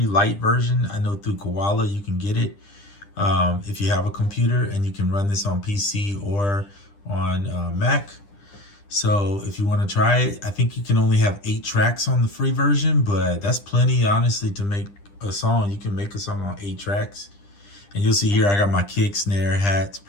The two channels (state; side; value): late; right; 10 ms